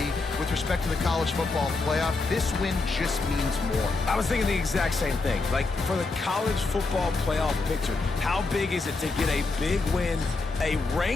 with respect to the college football playoff. This win just means more. I was thinking the exact same thing. Like, for the college football playoff picture, how big is it to get a big win, a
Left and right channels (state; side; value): quieter; right; 3.6 dB